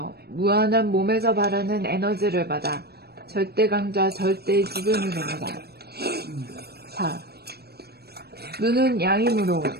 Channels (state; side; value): late; left; 0.47 ms